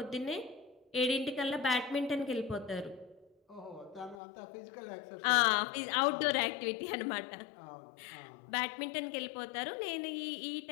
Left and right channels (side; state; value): right; drops out; at 4.2 s